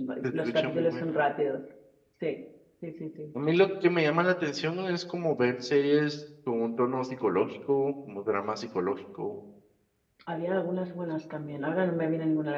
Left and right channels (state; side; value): identical; both; correlation 1.00